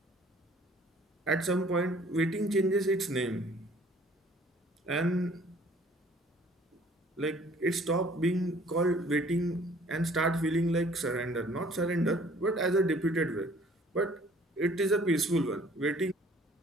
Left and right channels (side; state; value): both; normal; correlation 0.55